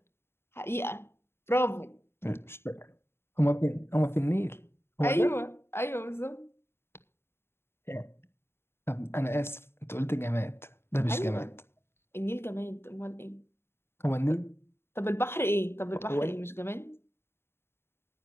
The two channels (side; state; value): right; late; 0.12 ms